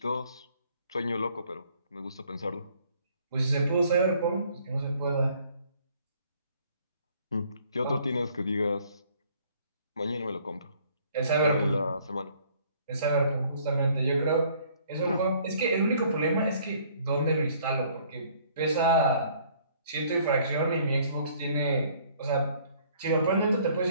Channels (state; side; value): inverted; both; correlation -0.60